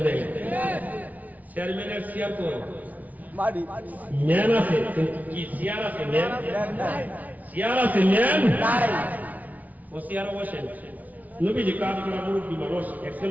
নাই? চেয়ারম্যানের চেয়ার কই? ম্যান আছে, কিন্তু কি চেয়ার আছে? ম্যান চেয়ার আছে, ম্যান ও চেয়ারে বসেন। নবীজি কাজ করা মুরব্বী মানুষ, একজন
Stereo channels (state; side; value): late; left; 0.074 ms